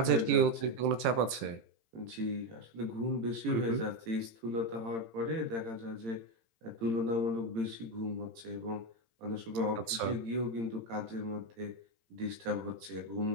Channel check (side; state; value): left; late; 18 ms